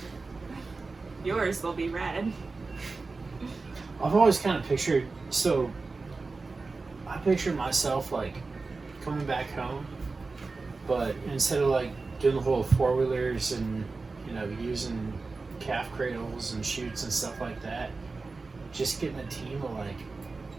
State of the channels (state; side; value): quieter; left; 3.9 dB